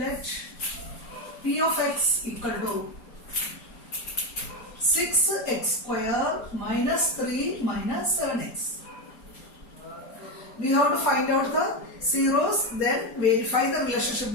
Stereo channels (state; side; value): late; right; 4.3 ms